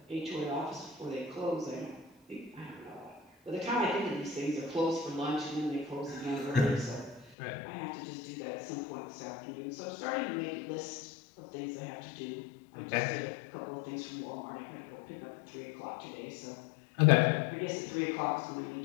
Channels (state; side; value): drops out; right; at 7.4 s